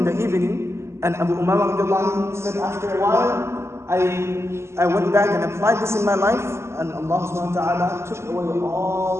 in the evening. And Abu Umaamah said, after a while, I went back and applied this in my life, and Allah subhanahu wa ta'ala took away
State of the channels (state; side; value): late; left; 0.13 ms